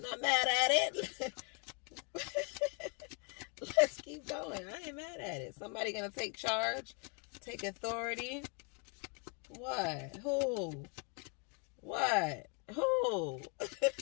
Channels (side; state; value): right; quieter; 36.6 dB